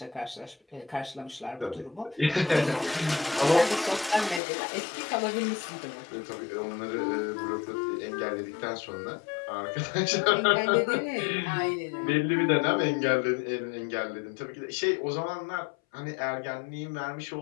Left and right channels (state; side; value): drops out; right; at 4.4 s